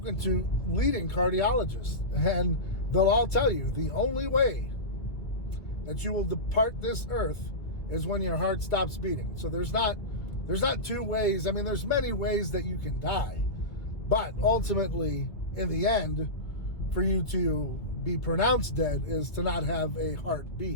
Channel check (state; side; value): late; right; 1.9 ms